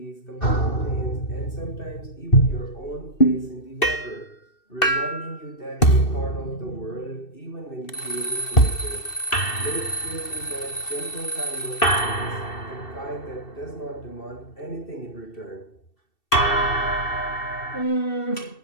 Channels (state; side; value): late; right; 2.7 ms